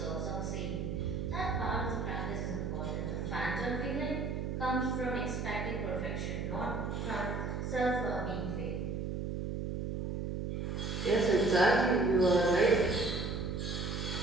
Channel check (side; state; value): right; noise; hum, 3 dB below the sound